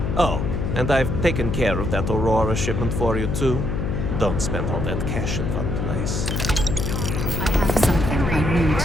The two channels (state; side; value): noise; left; hum, 1 dB below the sound